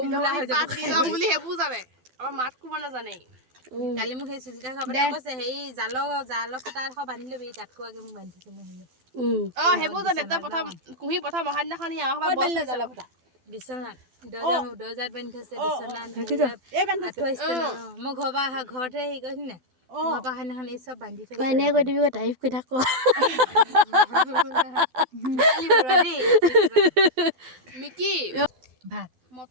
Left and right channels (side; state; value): left; late; 12 ms